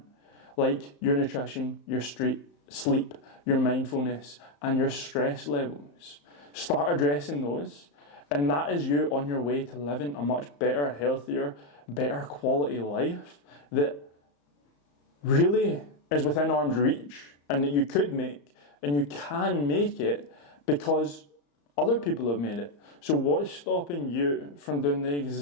like your nutrition, your sleep, your mindfulness, and your stress levels. Start addressing those, and that is you on your way to living a much better, healthier, better quality life that really is within arm's reach, and that you could make, and you can make it because other people have made it. So what's stopping you from doing the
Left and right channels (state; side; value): late; right; 35 ms